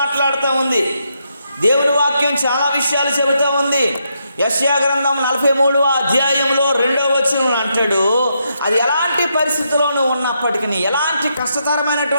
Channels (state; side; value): inverted; both; correlation -0.80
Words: ఉంది, దేవుని వాక్యం చాలా విషయాలు చెబుతూ ఉంది. యెషయా గ్రంథం 43వ అధ్యాయంలో 2వ వచనం అంటాడు, అది ఎలాంటి పరిస్థితుల్లోనూ ఉన్నప్పటికీ, ఎలాంటి